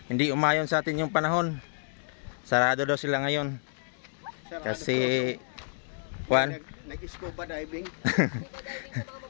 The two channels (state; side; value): silent; right; digital silence